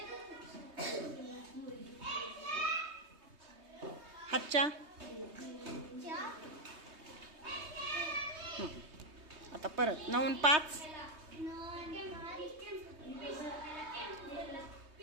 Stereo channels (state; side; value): late; left; 3.2 ms